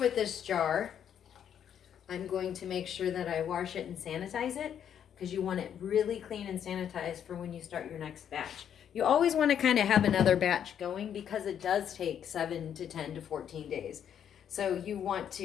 this jar, I'm going to make sure that I wash it and sanitize it because you want it really clean and sanitized for when you start your next batch. You always want to kind of have another batch going because it does take 7 to 10 to 14 days. So you want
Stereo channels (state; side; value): quieter; right; 9.0 dB